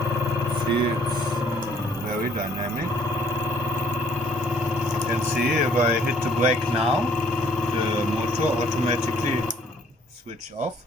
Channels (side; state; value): both; normal; correlation 0.62